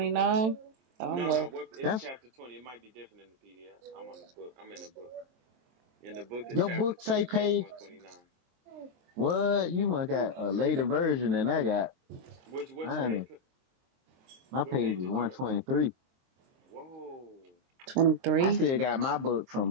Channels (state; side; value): late; left; 23 ms